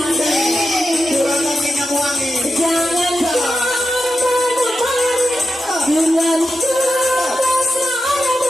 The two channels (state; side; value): normal; both; correlation 0.89